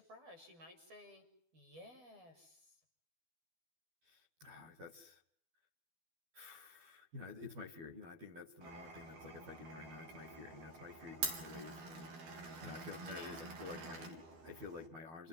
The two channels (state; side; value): late; left; 12 ms